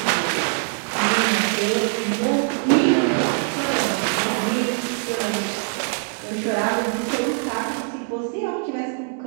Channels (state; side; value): silent; left; 59 dB below the other